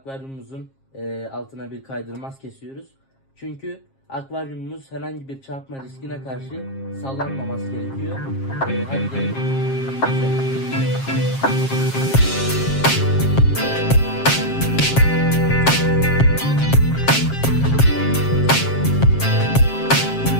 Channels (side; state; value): right; late; 7.5 ms